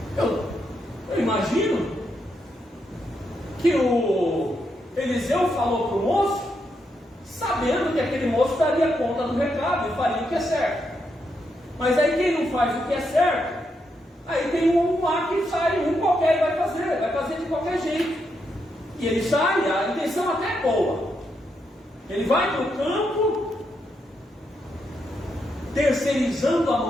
Eu imagino que o Eliseu falou para o moço, sabendo que aquele moço daria conta do recado e faria o que é certo. Mas aí quem não faz o que é certo, aí tem um lá que sai, um qualquer e vai fazer de qualquer jeito. E ele sai, a intenção até é boa. Ele vai para o campo, terceirizando a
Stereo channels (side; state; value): both; normal; correlation 0.81